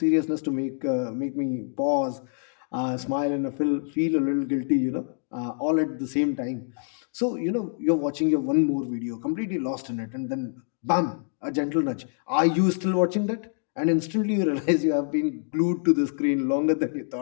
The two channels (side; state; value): right; silent; 61 dB below the other